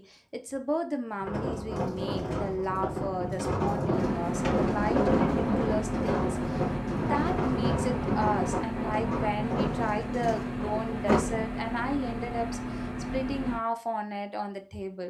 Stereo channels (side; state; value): both; identical; correlation 1.00